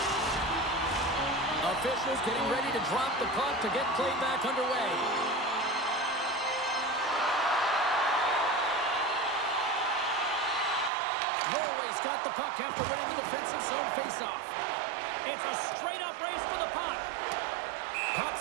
Officials getting ready to drop the puck to get play back underway. Norway's got the puck after winning the defensive zone faceoff. It's a straight-up race for the puck. Puck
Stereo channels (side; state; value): left; drops out; at 10.9 s